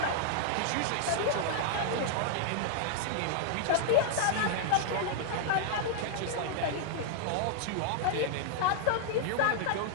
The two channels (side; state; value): both; different; correlation -0.01